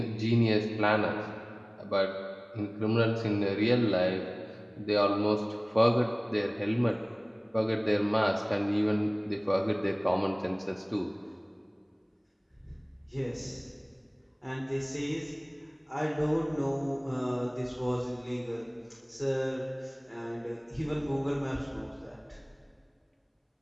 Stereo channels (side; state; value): both; identical; correlation 1.00